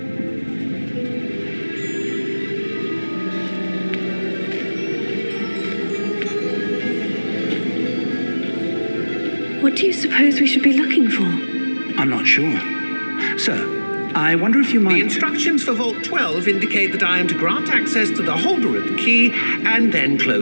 What do you suppose we should be looking for? I'm not sure. Sir, I wonder if you might... The instructions for Vault 12 indicate that I am to grant access to the holder of the key and then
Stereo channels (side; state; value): both; inverted; correlation -1.00